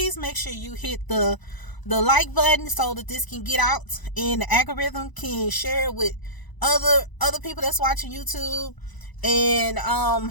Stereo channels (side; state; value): right; late; 1.0 ms